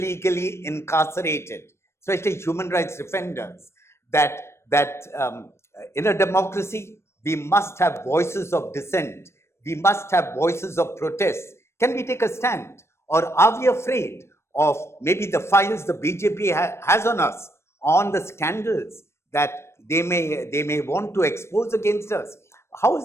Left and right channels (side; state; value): right; late; 0.13 ms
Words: incarcerated, especially human rights defenders, that in a democracy, we must have voices of dissent. We must have voices of protest. Can we take a stand? Or are we afraid of maybe the files the BJP has on us, on the scandals that they may want to expose against us? How is